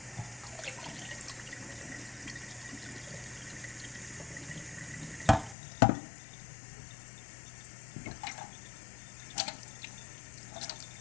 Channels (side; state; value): right; drops out; at 5.6 s